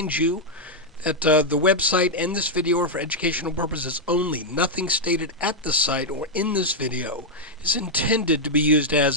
you that the website and this video are for educational purposes only. Nothing stated at the site or in this video is intended to be used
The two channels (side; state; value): both; normal; correlation -0.02